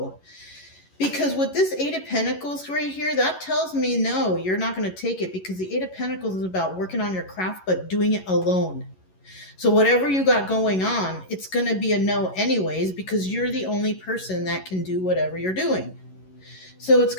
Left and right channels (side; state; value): right; late; 11 ms